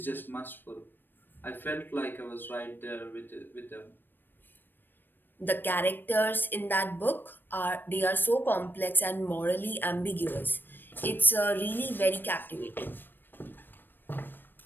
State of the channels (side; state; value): right; late; 0.094 ms